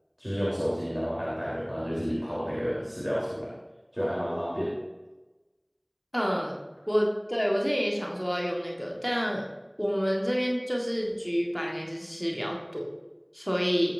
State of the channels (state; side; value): identical; both; correlation 1.00